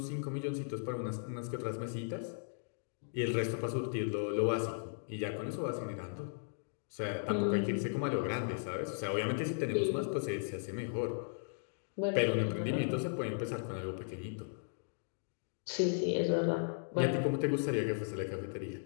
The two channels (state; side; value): silent; right; digital silence